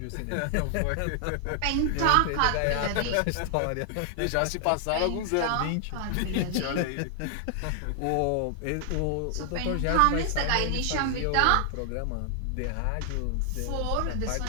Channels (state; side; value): different; both; correlation 0.00